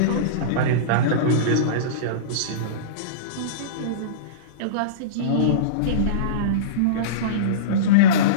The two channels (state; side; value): different; both; correlation -0.07